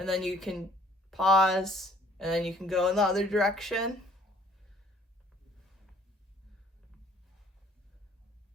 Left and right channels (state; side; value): normal; both; correlation 0.58